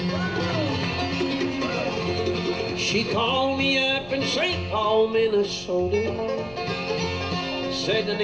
She called me up in St. Paul, Minnesota, said I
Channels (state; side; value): noise; left; rumble, 22 dB below the sound